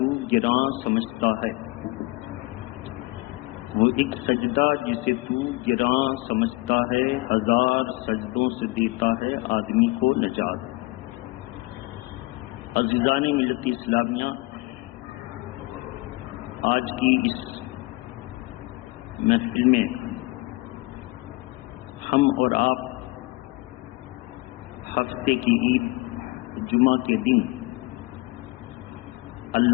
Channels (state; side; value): quieter; right; 22.7 dB